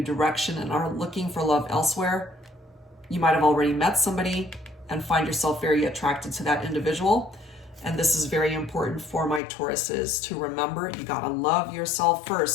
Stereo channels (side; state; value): right; drops out; at 9.4 s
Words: direction and are looking for love elsewhere, you might have already met somebody and find yourself very attracted to that individual. And this is very important for my Tauruses to remember. You gotta love yourself